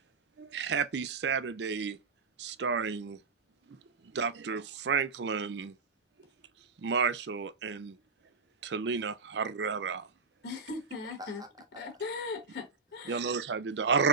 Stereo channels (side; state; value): left; quieter; 4.6 dB